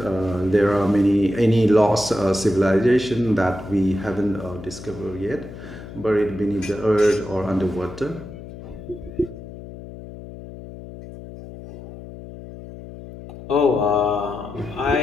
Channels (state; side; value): noise; left; hum, 14 dB below the sound